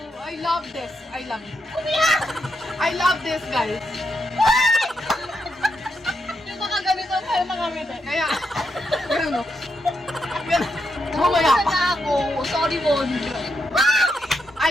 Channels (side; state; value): both; normal; correlation 0.82